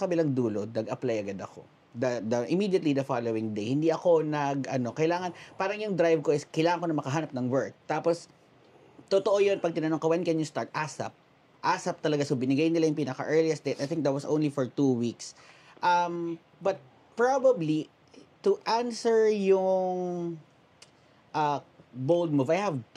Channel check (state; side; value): identical; both; correlation 1.00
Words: kabilang dulo, nag-apply agad ako. Immediately the following day, hindi ako kailangan, parang yung drive ko is, kailangan ko na makahanap ng work. Tapos, totoo yun, pag tinanong ka, when can you start? ASAP. ASAP talaga. So, binigay nila yung pinaka-earliest date. I think that was only for 2 weeks. But probably, to answer yung bold move, I have